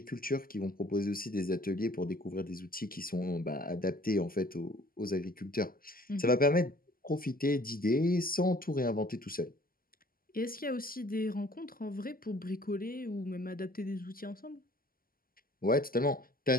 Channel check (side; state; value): right; late; 0.42 ms